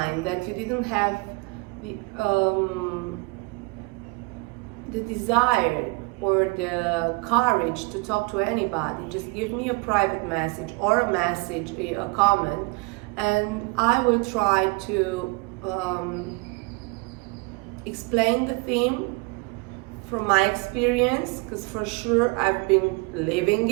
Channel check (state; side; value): quieter; left; 27.7 dB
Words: that you didn't have the desire or the courage to talk to anybody, just give me a private message or a comment, and I will try to explain the theme from my experience, because for sure I've been living